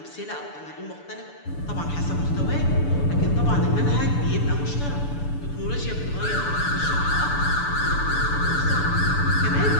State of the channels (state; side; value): late; right; 6.9 ms